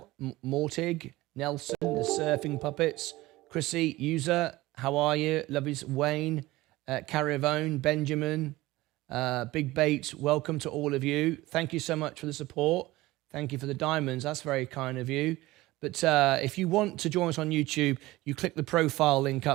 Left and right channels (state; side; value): quieter; left; 18.7 dB